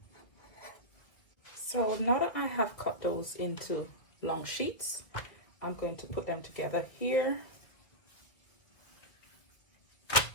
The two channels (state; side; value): late; right; 1.8 ms